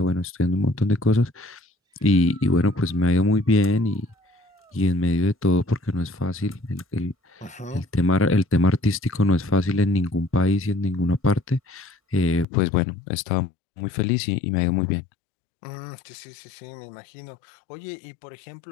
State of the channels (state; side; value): drops out; right; at 12.5 s